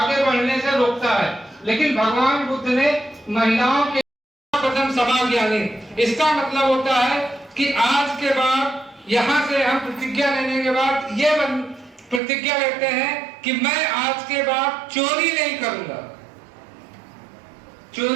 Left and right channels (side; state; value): left; drops out; at 12.2 s